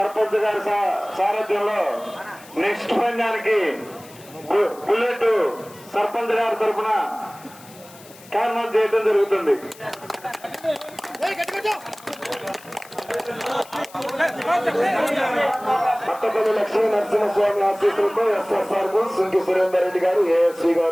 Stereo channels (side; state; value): left; noise; hiss, 22 dB below the sound